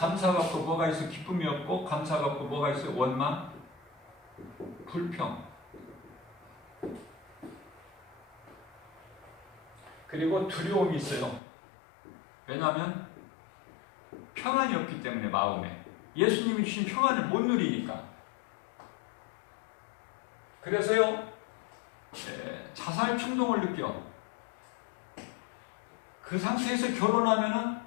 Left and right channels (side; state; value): right; drops out; at 11.4 s